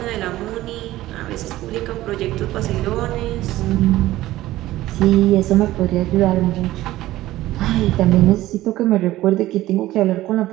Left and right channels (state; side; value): quieter; left; 15.9 dB